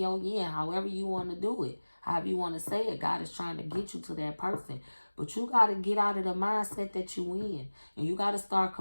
yin, however you want to do it. However you want to say it, God is trying to get you to that person. But you got to get out of the mindset that you in. And you got to start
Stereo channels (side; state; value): both; inverted; correlation -1.00